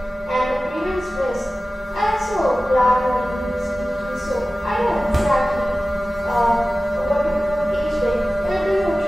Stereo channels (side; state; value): both; normal; correlation 0.96